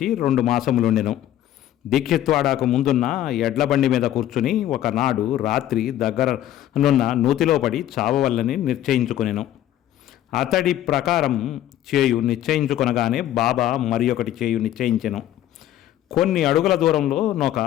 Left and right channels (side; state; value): right; quieter; 12.5 dB